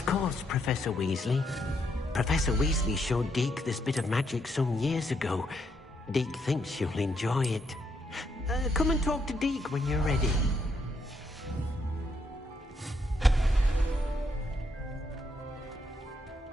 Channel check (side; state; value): both; normal; correlation 0.76